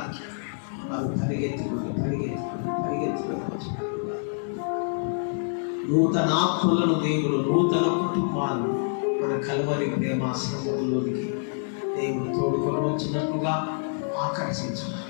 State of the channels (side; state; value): right; silent; digital silence